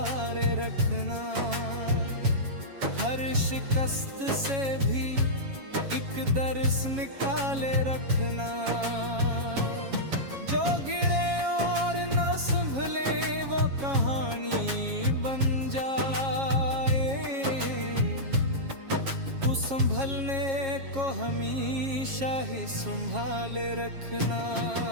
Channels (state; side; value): late; left; 7.3 ms